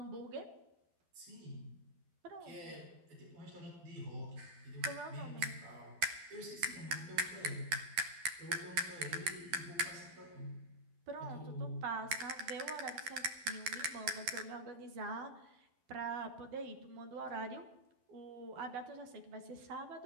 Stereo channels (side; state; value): left; late; 12 ms